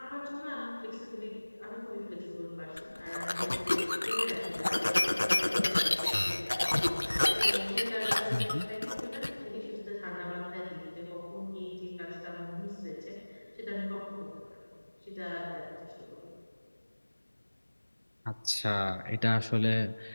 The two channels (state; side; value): inverted; both; correlation -1.00